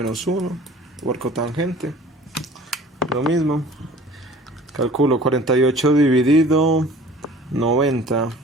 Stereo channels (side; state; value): both; normal; correlation 0.47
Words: 1. O arco tangente. Lo mismo. Calculo 48 dividido 90.